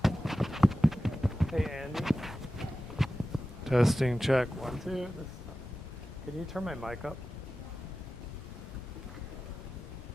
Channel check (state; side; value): normal; both; correlation 0.94